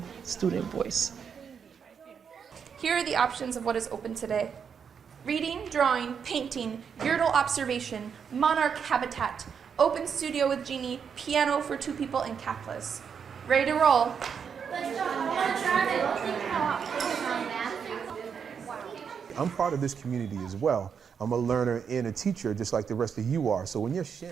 student voice. Here are the options of what is open today. Reading, drawing, painting, Gödel observation, monarch habitat, open studio with Genie, piano for 2 people, and Kaplas. Ready to roll? I'm part of this community as well. I'm a learner and a teacher just like the rest of you are. So when you're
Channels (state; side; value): quieter; left; 6.9 dB